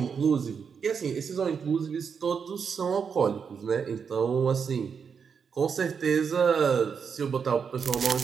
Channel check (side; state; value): left; quieter; 6.4 dB